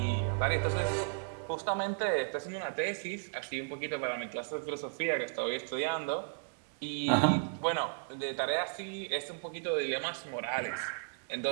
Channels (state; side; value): silent; left; digital silence